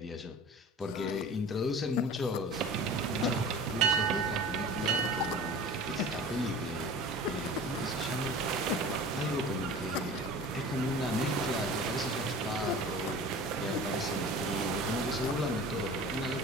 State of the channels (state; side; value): normal; both; correlation 0.39